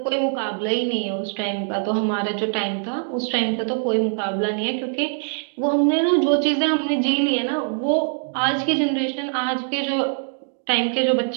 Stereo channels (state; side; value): silent; left; digital silence